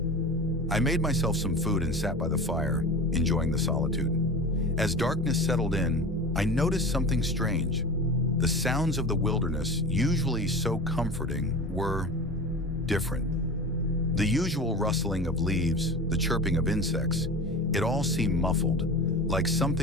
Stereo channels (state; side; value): normal; both; correlation 0.32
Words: I made myself some food and sat by the fire, enjoying the solitude. As darkness settled in, I noticed something strange. The sounds of the wilderness, usually so comforting, were different. The usual rustling of leaves, the chirping of insects, it all seemed muffled, like